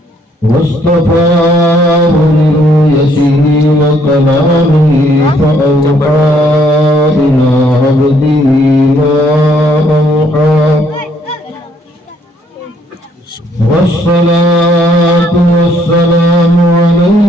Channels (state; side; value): normal; both; correlation 0.67